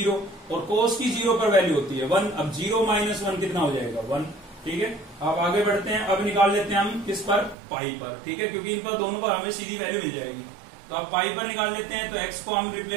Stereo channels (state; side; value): drops out; left; at 7.6 s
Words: और cos की 0 पर वैल्यू होती है 1। अब 0 माइनस 1 कितना हो जाएगा, 1। ठीक है, अब आगे बढ़ते हैं। अब निकाल लेते हैं हम किस पर, पाई पर। ठीक है, क्योंकि इन पर दोनों पर हमें सीधी वैल्यू मिल जाएगी। तो अब पाई पर निकाल लेते हैं। तो x को हम